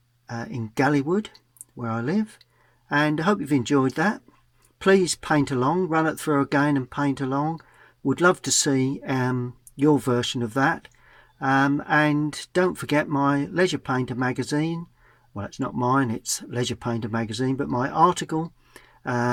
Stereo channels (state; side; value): identical; both; correlation 1.00